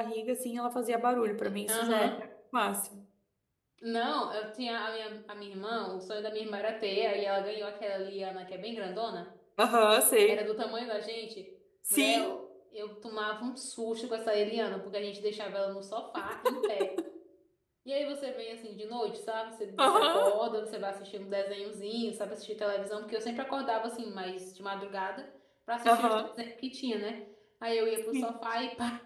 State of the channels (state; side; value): identical; both; correlation 1.00